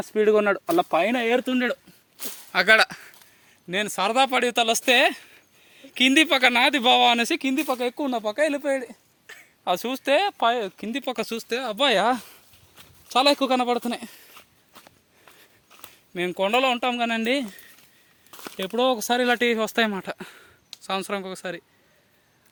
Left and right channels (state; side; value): identical; both; correlation 1.00